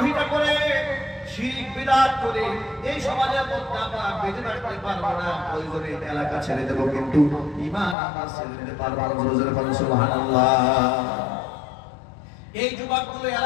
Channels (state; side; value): drops out; right; at 8.0 s